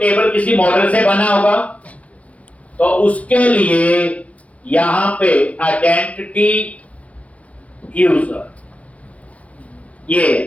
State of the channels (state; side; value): late; right; 0.066 ms